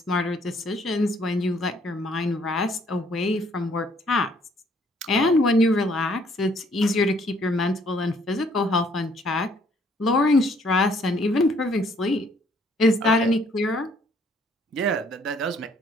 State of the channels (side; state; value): both; normal; correlation 0.64